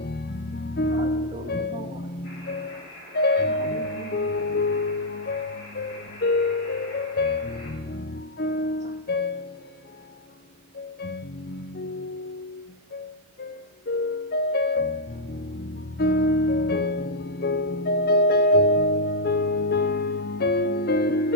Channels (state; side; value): normal; both; correlation -0.06